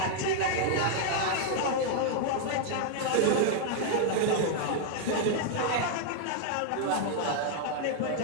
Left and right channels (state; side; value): different; both; correlation 0.00